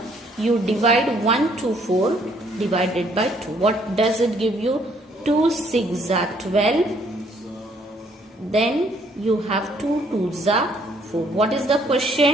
you divide 124 divided by 2. What does it give you? 2 6 are 12. Then you have 2 2s are 4. What is the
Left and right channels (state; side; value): normal; both; correlation 0.65